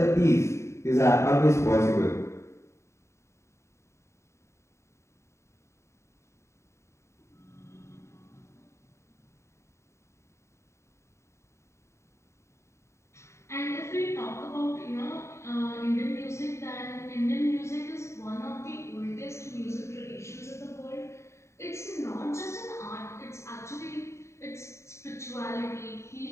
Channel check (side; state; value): right; late; 0.14 ms